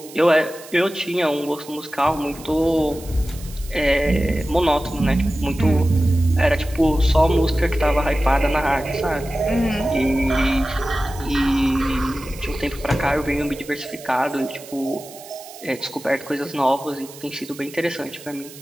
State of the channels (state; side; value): noise; right; hiss, 18 dB below the sound